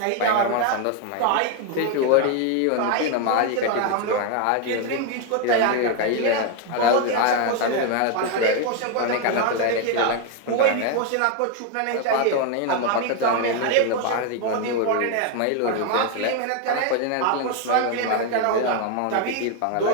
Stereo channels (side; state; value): both; different; correlation 0.01